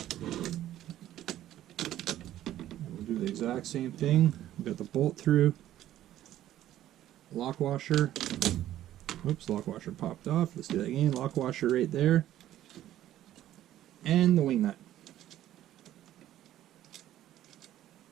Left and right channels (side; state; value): left; quieter; 12.9 dB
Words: We'll do the exact same thing. We've got the bolt through, lock washer. Oops, lock washer popped off. Let's do that again. Lock washer right there. And the wing nut.